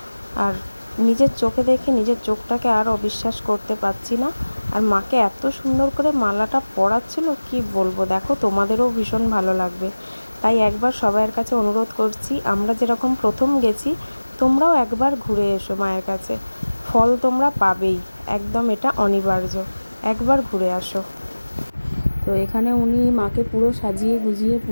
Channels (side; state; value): both; inverted; correlation -1.00